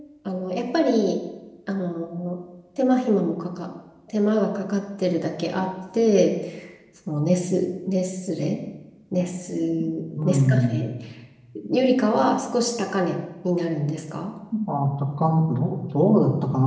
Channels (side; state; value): both; identical; correlation 1.00